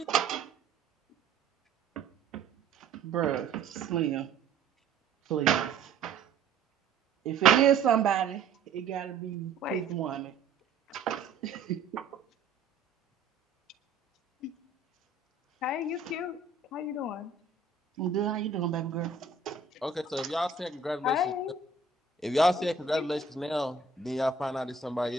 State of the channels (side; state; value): left; quieter; 4.5 dB